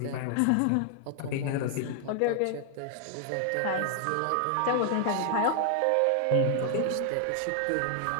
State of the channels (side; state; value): both; different; correlation 0.00